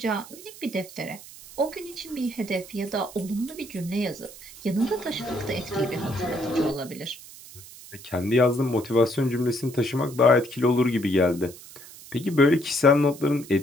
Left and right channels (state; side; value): noise; right; hiss, 17 dB below the sound